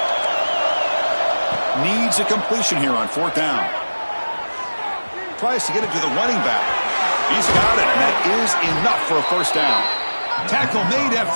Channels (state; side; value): inverted; both; correlation -1.00